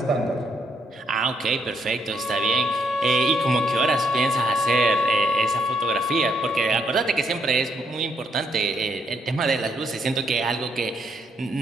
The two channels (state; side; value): normal; both; correlation 0.73